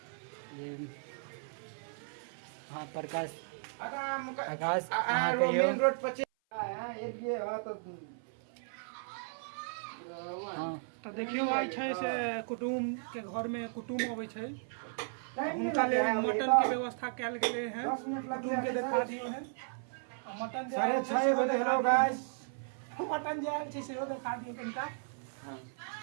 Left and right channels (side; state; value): left; silent; 54 dB below the other